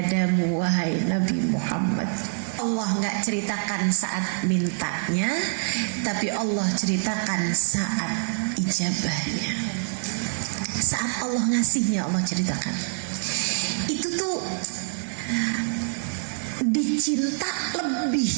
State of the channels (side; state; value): left; silent; digital silence